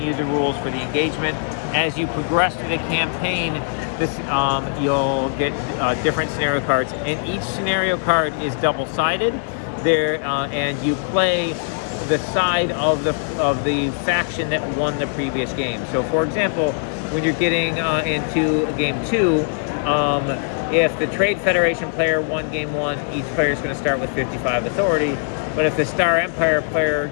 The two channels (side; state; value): right; silent; digital silence